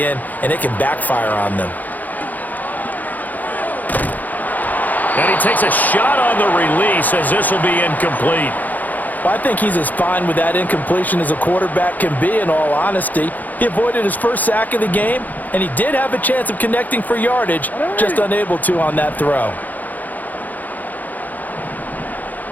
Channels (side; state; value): right; late; 0.082 ms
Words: in, and it can backfire on them. And he takes a shot on the release as this will be incomplete. Well, I think he's as fine with that incompletion as a quarterback can be, in all honesty. He avoided his first sack of the game, and he did have a chance of connecting for yardage, just unable to on that throw.